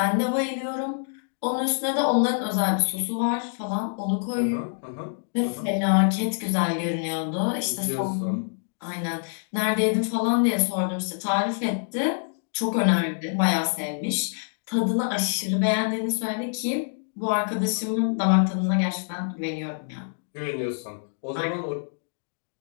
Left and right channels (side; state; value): right; silent; digital silence